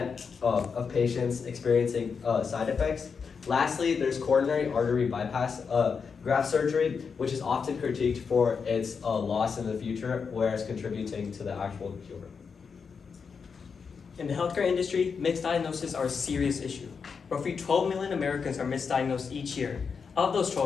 of patients experiencing side effects. Lastly, there's coronary artery bypass graft surgery, which is often critiqued for its loss in the future, whereas contributing to the actual cure. In the healthcare industry, misdiagnoses are a serious issue. Roughly 12 million Americans are misdiagnosed each year. Of those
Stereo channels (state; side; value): quieter; right; 5.8 dB